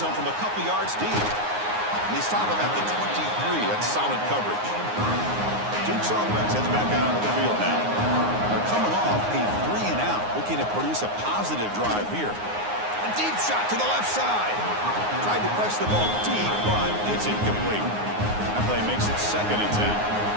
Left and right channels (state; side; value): late; left; 9.6 ms